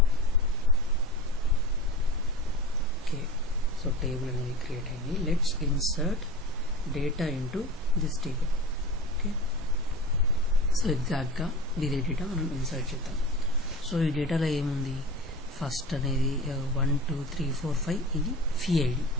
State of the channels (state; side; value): normal; both; correlation 0.33